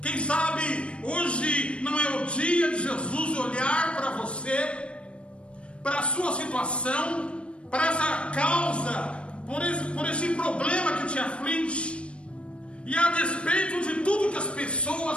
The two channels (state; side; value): late; right; 0.059 ms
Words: Quem sabe hoje não é o dia de Jesus olhar para você, para a sua situação, para essa causa, por esse problema que te aflige, e a despeito de tudo que as